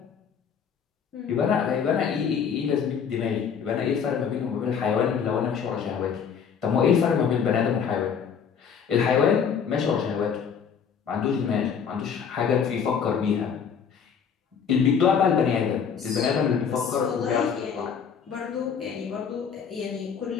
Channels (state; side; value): quieter; right; 7.0 dB